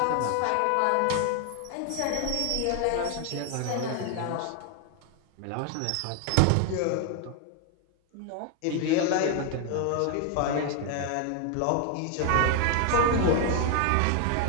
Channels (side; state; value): both; different; correlation 0.01